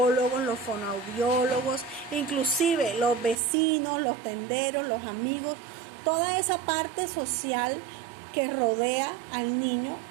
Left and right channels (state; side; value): drops out; left; at 3.4 s